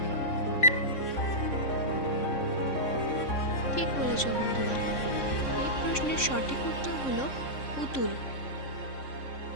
ঠিক বলেছ বন্ধুরা, এই প্রশ্নের সঠিক উত্তর হলো পুতুল।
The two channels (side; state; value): right; late; 3.6 ms